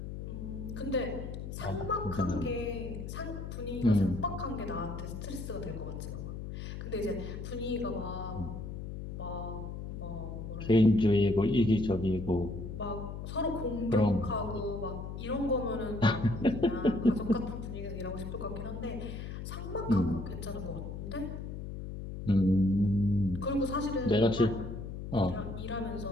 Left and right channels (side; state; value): left; noise; hum, 7 dB below the sound